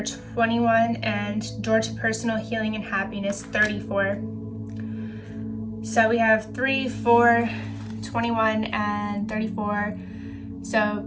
21, and door to personal healing and happiness, 34. So we have 3, 4, 21, and 34. So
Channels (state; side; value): identical; both; correlation 1.00